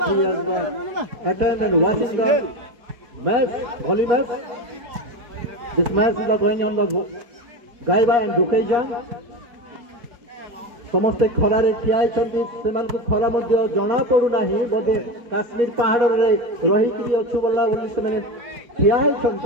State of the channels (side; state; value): left; late; 4.2 ms